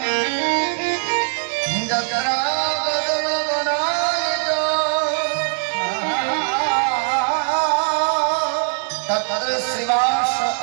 যত্র বদন বনায়িত তত্র শ্রীবাস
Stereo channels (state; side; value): silent; left; 62 dB below the other